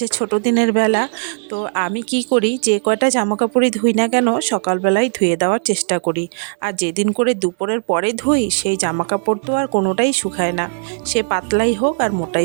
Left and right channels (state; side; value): silent; left; 65 dB below the other